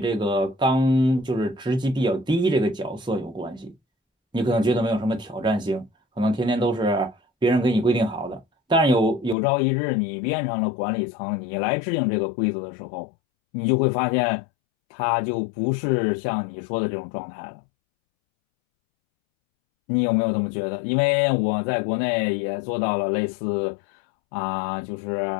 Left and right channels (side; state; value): right; drops out; at 9.3 s